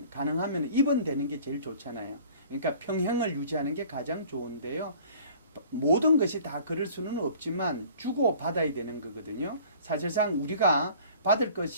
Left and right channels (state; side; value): inverted; both; correlation -0.49